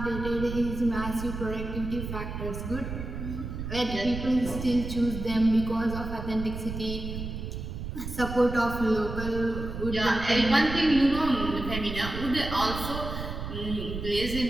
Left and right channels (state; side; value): noise; right; rumble, 6 dB below the sound